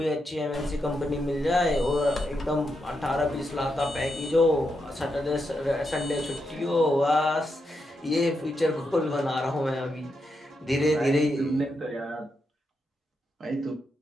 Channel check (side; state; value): both; normal; correlation 0.84